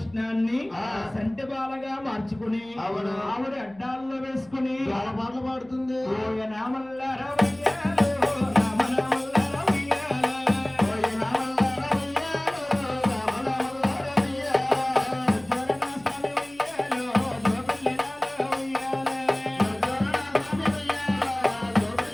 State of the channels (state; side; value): noise; left; hum, 26 dB below the sound